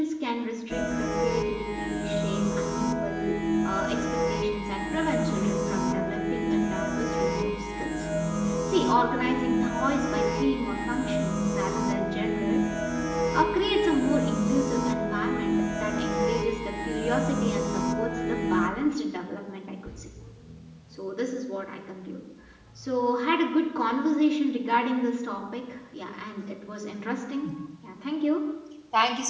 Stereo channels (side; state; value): both; identical; correlation 1.00